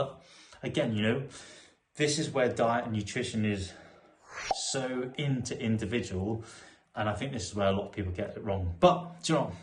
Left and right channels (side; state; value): both; identical; correlation 1.00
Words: again, this is where diet and nutrition is so individual, and I think this is where a lot of people get it wrong. But do you know what?